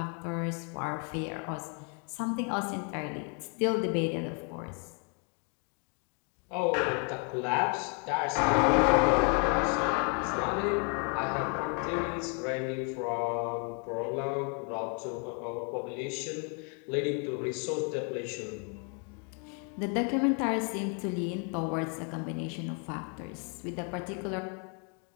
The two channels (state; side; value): quieter; right; 38.3 dB